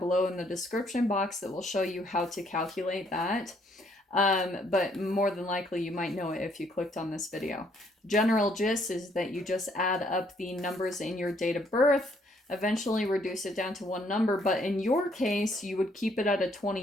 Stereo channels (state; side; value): normal; both; correlation 0.67